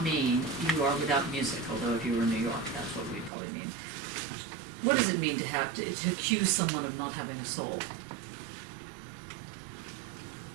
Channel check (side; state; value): left; drops out; at 3.3 s